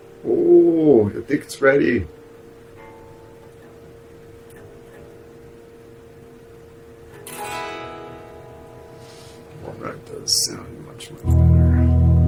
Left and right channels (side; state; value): both; identical; correlation 1.00